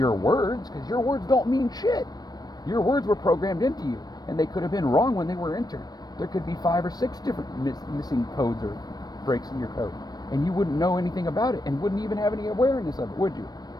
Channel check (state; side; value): late; right; 0.19 ms